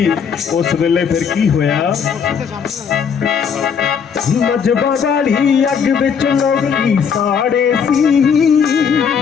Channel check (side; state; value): right; quieter; 6.8 dB